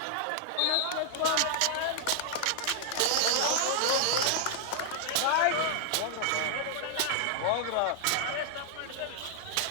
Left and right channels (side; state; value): both; different; correlation -0.01